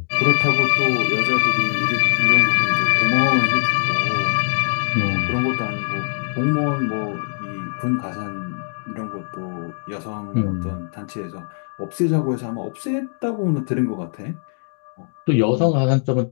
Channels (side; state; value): right; silent; digital silence